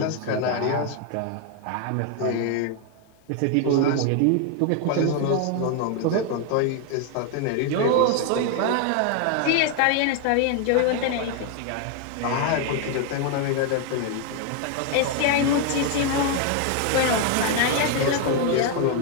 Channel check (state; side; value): different; both; correlation 0.01